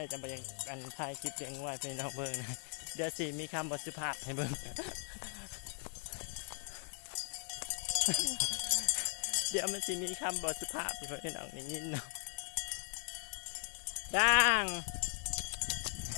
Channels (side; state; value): right; silent; 52 dB below the other